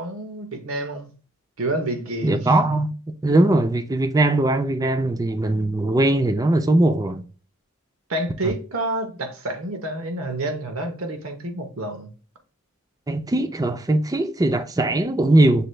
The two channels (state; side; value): normal; both; correlation 0.73